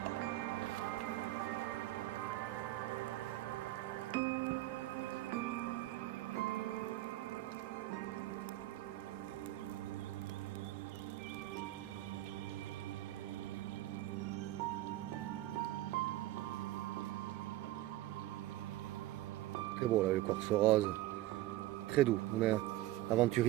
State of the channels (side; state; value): left; quieter; 15.7 dB